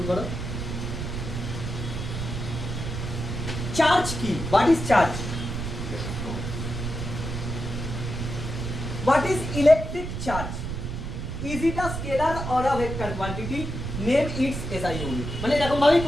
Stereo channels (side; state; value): right; noise; rumble, 5 dB below the sound